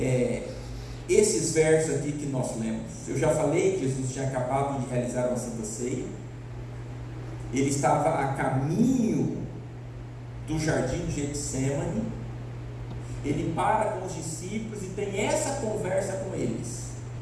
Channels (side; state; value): both; identical; correlation 1.00